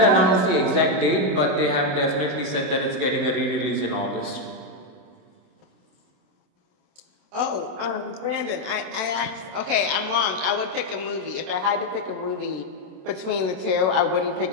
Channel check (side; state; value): left; late; 27 ms